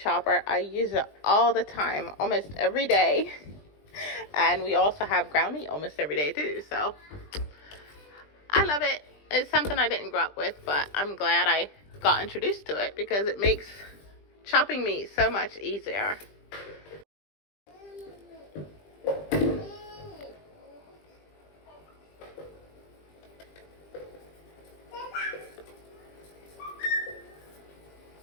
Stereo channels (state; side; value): late; right; 20 ms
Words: I use it all the time, almost every day. And we also have ground meat almost every day too, so I love it. It's something I didn't grow up with, but I'm glad I got introduced to it because it makes chopping meat so much easier.